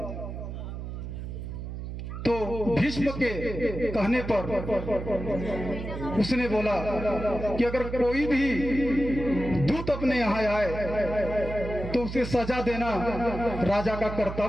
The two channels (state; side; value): noise; right; hum, 7 dB below the sound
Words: तो भीष्म के कहने पर उसने बोला कि अगर कोई भी दूत अपने यहाँ आए तो उसे सजा देना राजा का